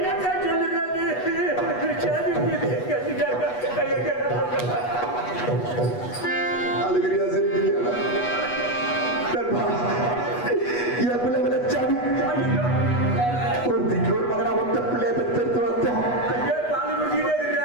அழுகிறியா சிரிக்கிறியா? என் பிள்ளை விளைச்சாமி ஒருத்திக்கு ஒரு மகனா ஒத்த பிள்ளைய பெற்றெடுத்து வளர்த்தோம்.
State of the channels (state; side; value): late; right; 8.2 ms